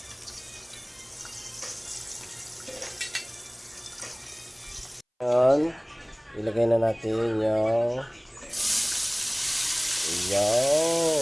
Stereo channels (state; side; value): identical; both; correlation 1.00